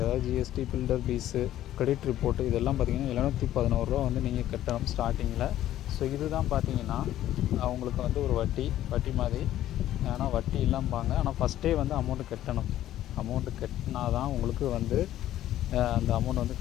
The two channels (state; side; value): quieter; right; 12.9 dB